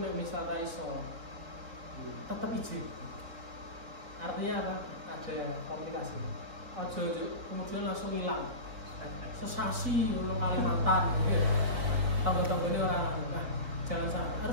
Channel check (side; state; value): left; late; 3.9 ms